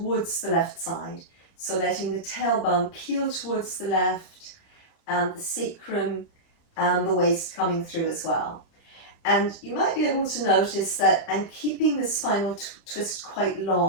the left side. So letting the tailbone peel towards the left and the sacrum and the waist coming through as well. And you might be able to notice that I'm keeping the spinal twist quite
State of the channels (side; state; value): right; late; 31 ms